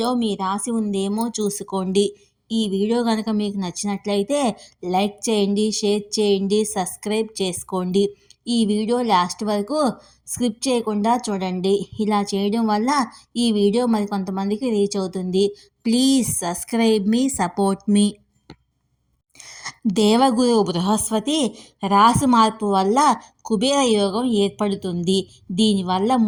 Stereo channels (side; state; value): both; identical; correlation 1.00